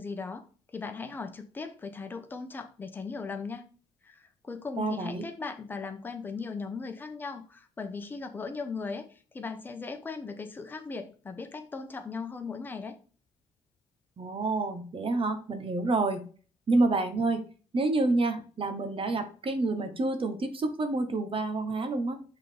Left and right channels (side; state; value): both; normal; correlation 0.70